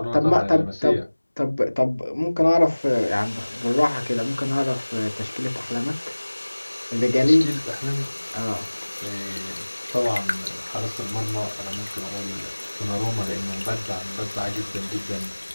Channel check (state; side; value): inverted; both; correlation -1.00